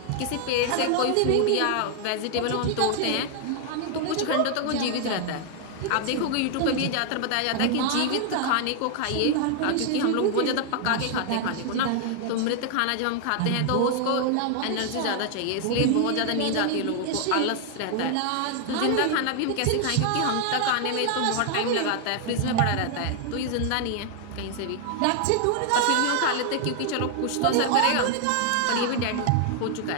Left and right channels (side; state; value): both; different; correlation 0.00